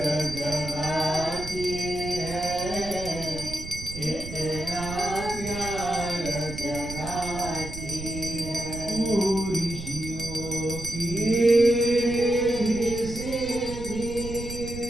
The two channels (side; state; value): right; noise; rumble, 10 dB below the sound